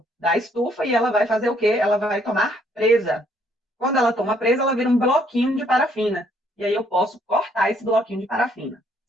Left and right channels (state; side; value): normal; both; correlation 0.67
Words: da estufa e ela vai fazer o quê? Ela vai tomar presa. Quando ela toma presa, ela vira um bloquinho de parafina. E aí eu posso cortar esse bloquinho de parafina,